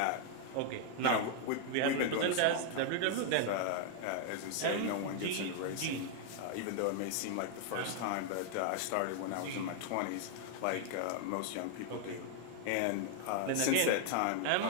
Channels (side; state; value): both; different; correlation 0.00